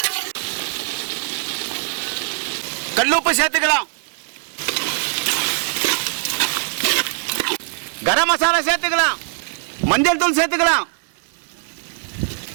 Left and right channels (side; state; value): left; silent; 61 dB below the other